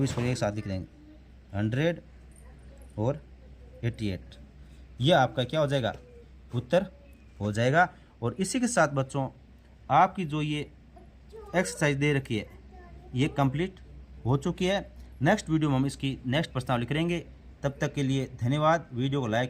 इसको एक साथ लिख देंगे 100 और 88, यह आपका क्या हो जाएगा, उत्तर हो जाएगा। और इसी के साथ बच्चों आपकी जो ये एक्सरसाइज दे रखी है ये कंप्लीट हो चुकी है। नेक्स्ट वीडियो में हम इसकी नेक्स्ट प्रश्नावली करेंगे। तब तक के लिए धन्यवाद। वीडियो को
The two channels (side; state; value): both; identical; correlation 1.00